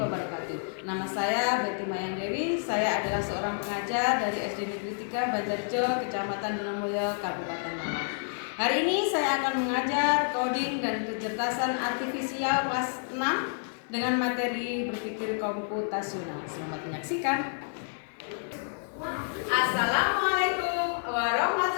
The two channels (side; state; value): right; silent; digital silence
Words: Nama saya Betty Mayang Dewi. Saya adalah seorang pengajar dari SD Negeri 3 Banjarjo, Kecamatan Donomulyo, Kabupaten Malang. Hari ini saya akan mengajar coding dan kecerdasan artifisial kelas 6 dengan materi berpikir komputasional. Selamat menyaksikan. Assalamualaikum